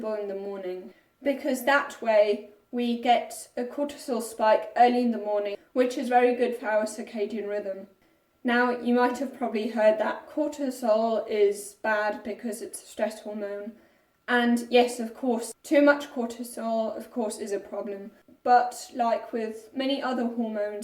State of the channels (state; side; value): identical; both; correlation 1.00